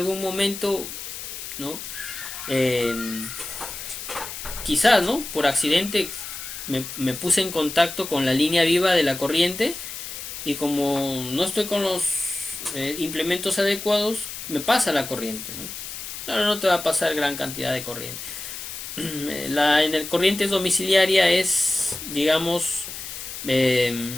momento, ¿no? Eh, quizás, ¿no? Por accidente me puse en contacto con la línea viva de la corriente y como no estoy con los implementos adecuados, me pasa la corriente, ¿no? Claro, no te va a pasar gran cantidad de corriente. En el corriente domiciliaria es, digamos,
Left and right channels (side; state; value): left; noise; hiss, 9 dB below the sound